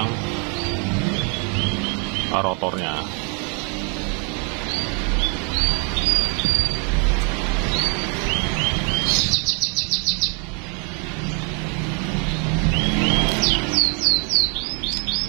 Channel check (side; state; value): left; quieter; 35.8 dB